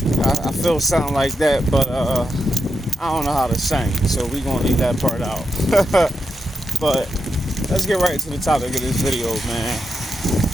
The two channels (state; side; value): normal; both; correlation 0.87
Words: I feel something like that, but I don't know how to sing, so we're gonna leave that part out. But let's get right to the topic of this video, man.